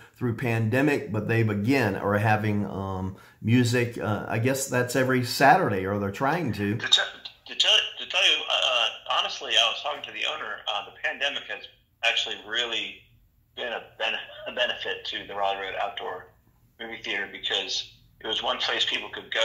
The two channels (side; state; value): both; identical; correlation 1.00